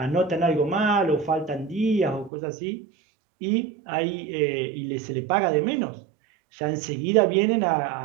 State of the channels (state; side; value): drops out; left; at 2.3 s